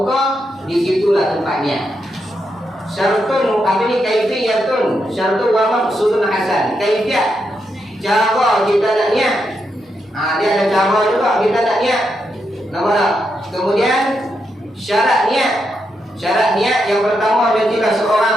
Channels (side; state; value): both; normal; correlation 0.83